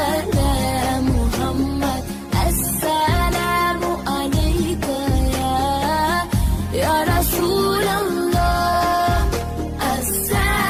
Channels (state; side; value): identical; both; correlation 1.00